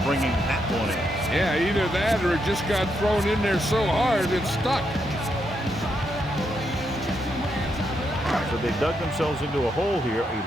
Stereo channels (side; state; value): both; normal; correlation 0.80